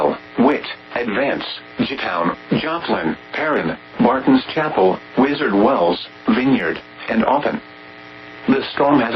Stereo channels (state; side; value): identical; both; correlation 1.00